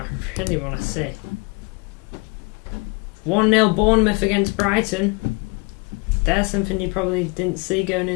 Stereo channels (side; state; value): right; quieter; 28.7 dB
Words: really want to see. 1-0 Bournemouth against Brighton. There's something you probably didn't see going